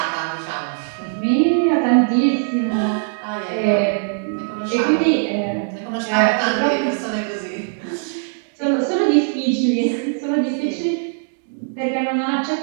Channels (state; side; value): silent; left; digital silence